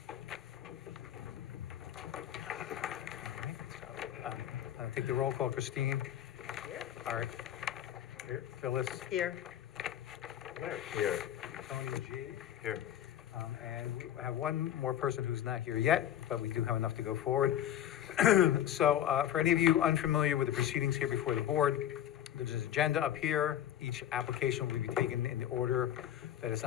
All right, so, I'll take the roll call. Christine? Here. Art? Here. Phyllis? Here. Larry? Here. Tony G? Here. And we have one more person who's not here yet, but we do have enough to go forward. So for any of you unfamiliar with the proceedings here before the board, there's an agenda up here. Each application will be taken in the order that is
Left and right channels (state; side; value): quieter; right; 11.0 dB